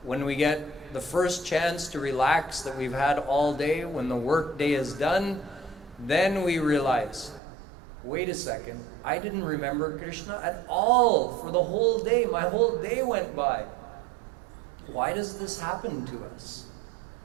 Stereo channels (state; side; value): drops out; left; at 7.4 s